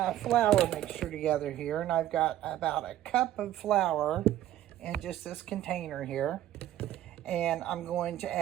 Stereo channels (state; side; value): quieter; left; 12.8 dB